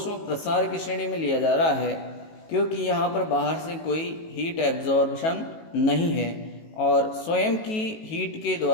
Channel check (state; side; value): late; right; 18 ms